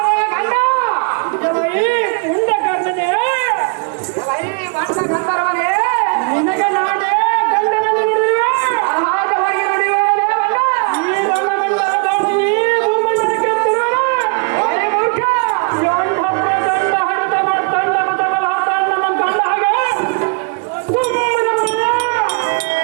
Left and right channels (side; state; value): left; quieter; 34.1 dB